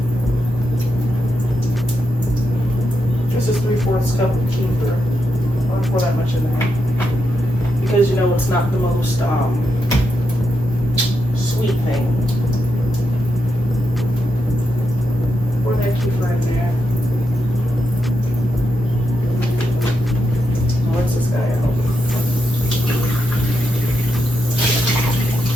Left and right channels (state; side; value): normal; both; correlation 0.84